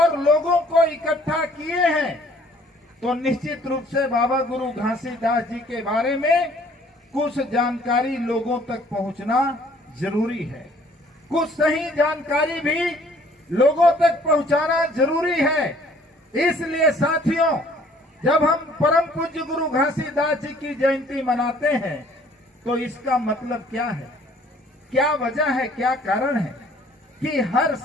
लोगों को इकट्ठा किए हैं, तो निश्चित रूप से बाबा गुरु घासीदास जी के बारे में कुछ जानकारी लोगों तक पहुंचना जरूरी है। कुछ सही जानकारी भी लोगों तक पहुंचाना जरूरी है। इसलिए साथियों, जब हम परम पूज्य गुरु घासीदास जी की जयंती मनाते हैं तो इसका मतलब क्या है, क्या वजह है, क्या कारण है कि हर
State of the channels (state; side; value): normal; both; correlation 0.57